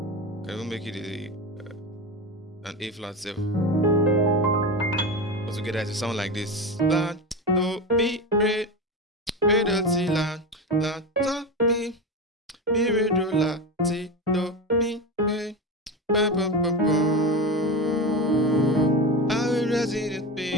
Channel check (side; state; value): both; normal; correlation 0.21